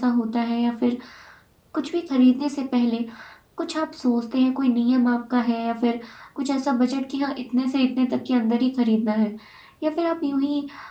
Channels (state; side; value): identical; both; correlation 1.00